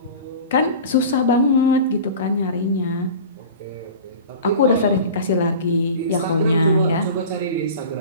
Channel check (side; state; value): both; inverted; correlation -0.36